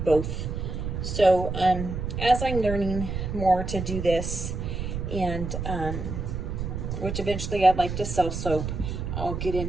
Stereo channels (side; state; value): right; noise; rumble, 4 dB below the sound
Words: both. So as I'm learning more to do this, and which eventually I'd like to sell soap, I'll get